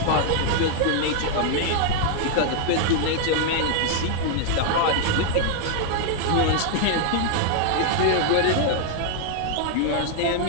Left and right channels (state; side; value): different; both; correlation 0.00